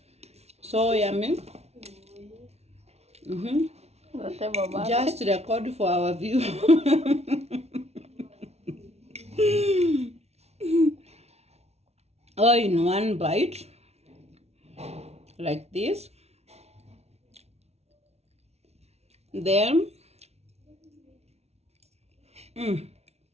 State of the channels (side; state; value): left; late; 0.31 ms